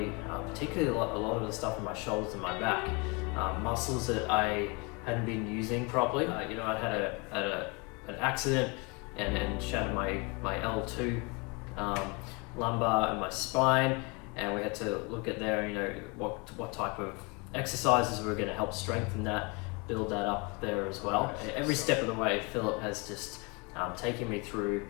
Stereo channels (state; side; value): quieter; right; 29.9 dB